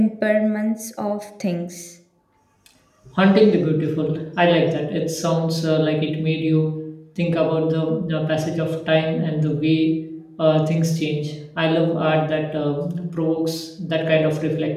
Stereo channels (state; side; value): identical; both; correlation 1.00